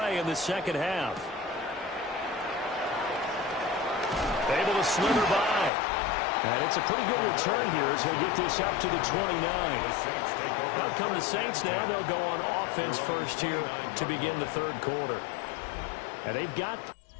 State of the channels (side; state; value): right; drops out; at 5.7 s